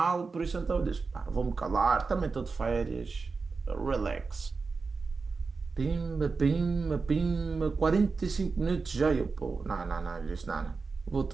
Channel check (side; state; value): left; quieter; 4.5 dB